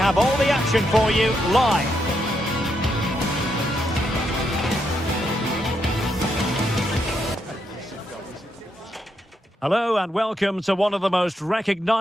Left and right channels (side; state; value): both; normal; correlation 0.80